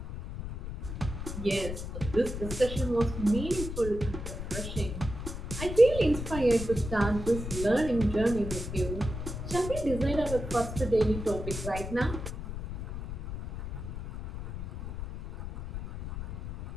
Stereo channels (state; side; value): noise; left; rumble, 7 dB below the sound